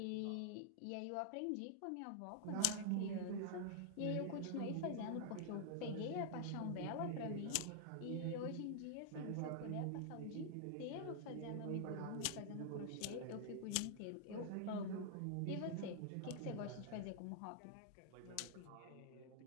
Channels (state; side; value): different; both; correlation -0.01